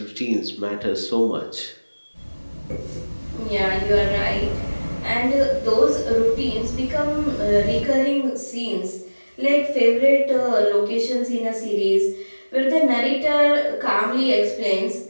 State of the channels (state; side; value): inverted; both; correlation -1.00